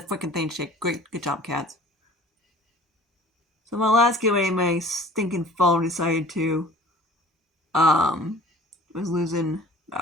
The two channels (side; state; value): both; normal; correlation 0.48